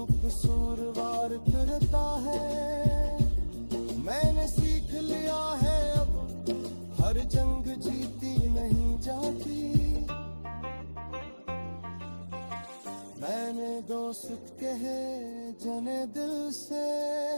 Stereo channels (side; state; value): both; inverted; correlation -1.00